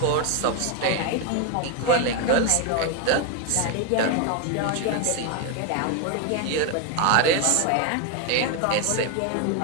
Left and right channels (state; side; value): different; both; correlation 0.01